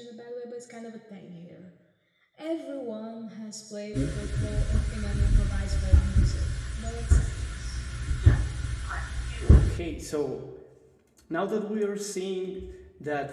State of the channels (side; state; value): both; identical; correlation 1.00